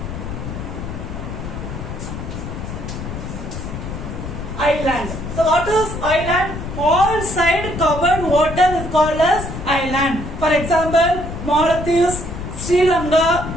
Island. So what is island? All side covered water is called as island. For example, Mauritius, Sri Lanka,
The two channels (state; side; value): noise; left; rumble, 7 dB below the sound